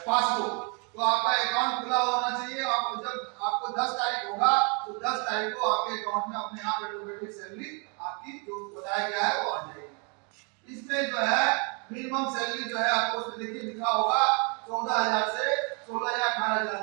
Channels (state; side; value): quieter; left; 35.3 dB